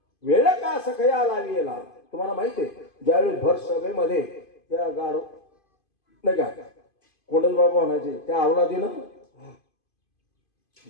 वेळ का सखया लावीला. तुम्हाला माहिती आहे ज्यावेळी भर सभेमध्ये त्या गाढ नाही का कोंडल बाबा म्हणायचे त्या अवलादीनं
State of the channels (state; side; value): late; right; 2.5 ms